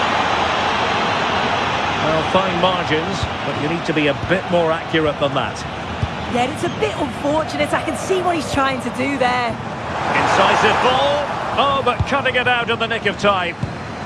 Well, fine margins, but you need to be a bit more accurate than that. Yeah, it's a bit unfortunate. I can see what he's trying to do there. Incisive ball. Oh, but cutting it out in the nick of time.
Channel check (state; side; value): identical; both; correlation 1.00